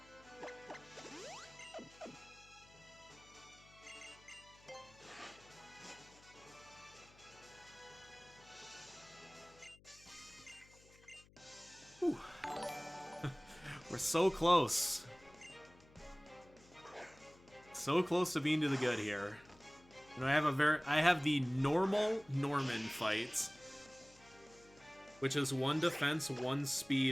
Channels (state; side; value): noise; left; hum, 25 dB below the sound